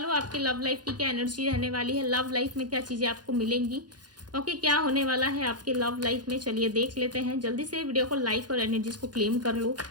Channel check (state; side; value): late; left; 0.69 ms